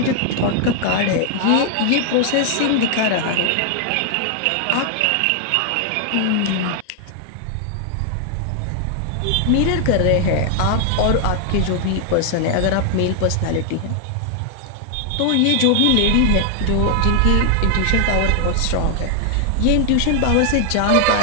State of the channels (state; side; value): different; both; correlation 0.00